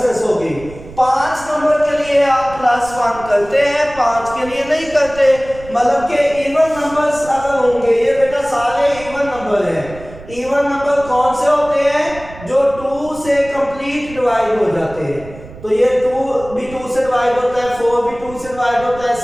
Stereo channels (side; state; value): right; noise; rumble, 17 dB below the sound